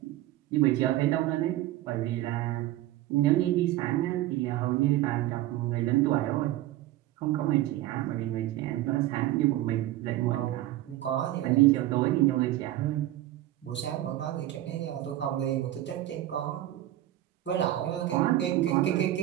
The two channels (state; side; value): quieter; left; 14.7 dB